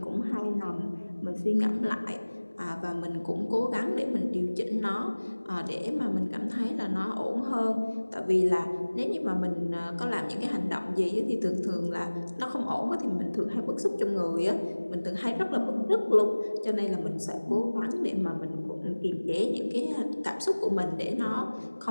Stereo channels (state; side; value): inverted; both; correlation -1.00